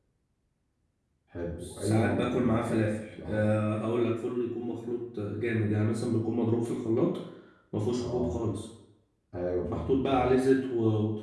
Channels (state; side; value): identical; both; correlation 1.00